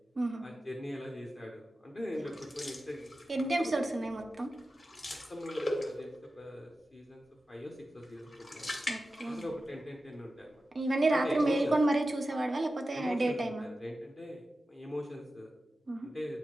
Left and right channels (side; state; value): both; normal; correlation 0.93